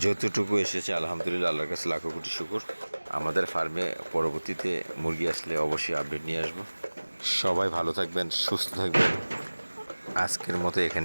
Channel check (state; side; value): inverted; both; correlation -1.00